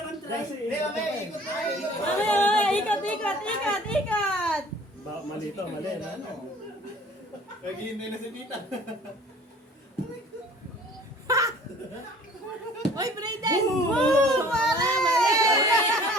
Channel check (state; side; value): normal; both; correlation 0.50